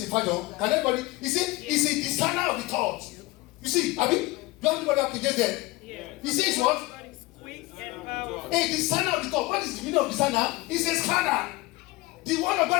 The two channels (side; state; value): right; quieter; 20.8 dB